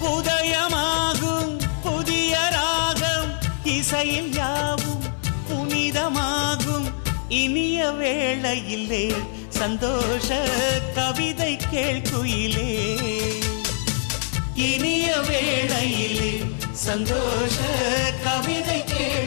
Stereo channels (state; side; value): silent; right; digital silence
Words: உதயமாகும் புதிய ராகம் இசையில் யாவும் புனிதமாகும். இனிய வேளையிலே சந்தோஷ கவிதை கேள்குயிலே. இனிய வேளையிலே சந்தோஷ கவிதை